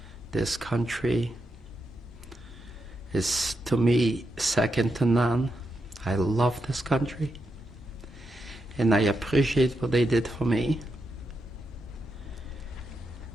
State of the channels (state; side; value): normal; both; correlation 0.85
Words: This country is, to me, second to none. I love this country, and I appreciate what they did for me.